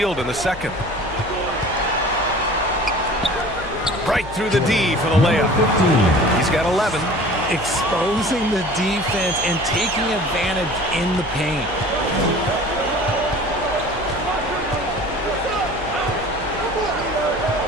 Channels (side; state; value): left; noise; hum, 15 dB below the sound